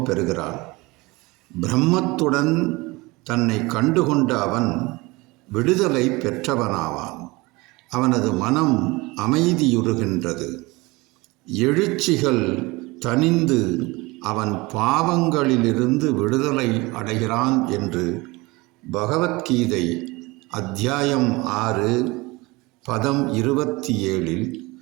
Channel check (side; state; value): left; quieter; 23.2 dB